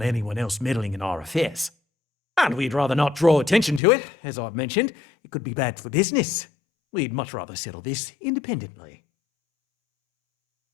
anyone else meddling in our affairs. And we'd rather not draw attention to it, as I've mentioned. It could be bad for business. We'd much rather settle this independently.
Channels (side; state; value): right; drops out; at 3.8 s